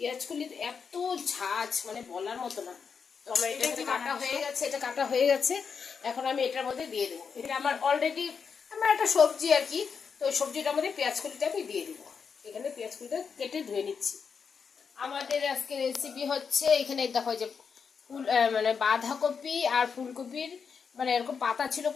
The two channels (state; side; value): quieter; right; 6.1 dB